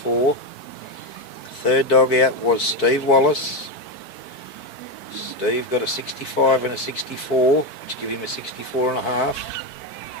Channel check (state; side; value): late; right; 4.5 ms